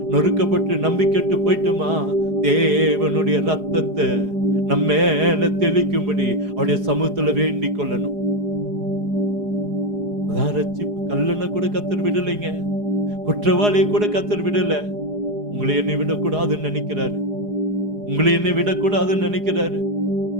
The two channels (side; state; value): left; late; 4.8 ms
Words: நொறுக்கப்பட்டு நம்பிக்கட்டு போயிட்டோமா, தேவனுடைய ரத்தத்தை நம்ம மேல தெளிக்கும்படி அவருடைய சமூகத்துல வேண்டிக் கொள்ளணும். அதான் ரட்சிப்பு. கல்லனை கூட கர்த்தர் விடலைங்க, குற்றவாளியை கூட கர்த்தர் விடல. உங்களை என்னை விடக்கூடாதுன்னு நினைக்கிறாரு, உங்களை என்னை விடக்கூடாதுன்னு நினைக்கிறாரு.